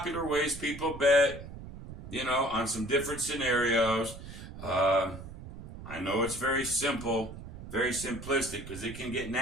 ways people bet, on some different scenarios. I know it's very simple, very simplistic, because it can get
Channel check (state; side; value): noise; right; rumble, 12 dB below the sound